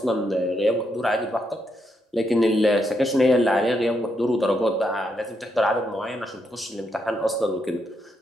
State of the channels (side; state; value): both; normal; correlation 0.80